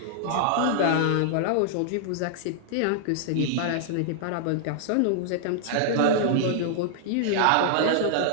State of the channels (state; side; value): different; both; correlation -0.01